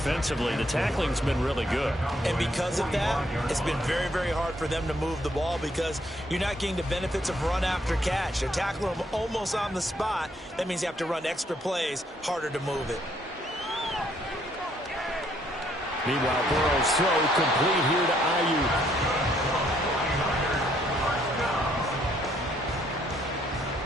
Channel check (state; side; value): normal; both; correlation 0.69